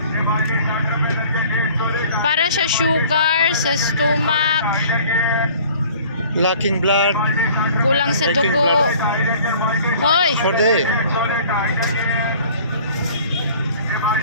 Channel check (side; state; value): both; inverted; correlation -0.51